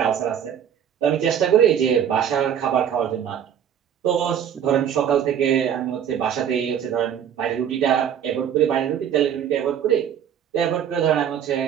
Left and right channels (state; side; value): quieter; left; 9.0 dB